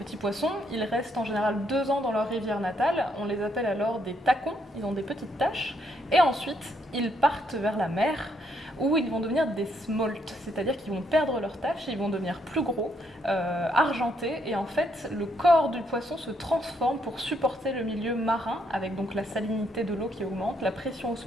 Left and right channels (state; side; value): normal; both; correlation 0.74